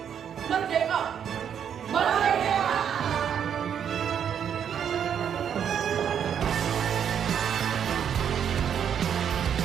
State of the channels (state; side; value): quieter; left; 8.4 dB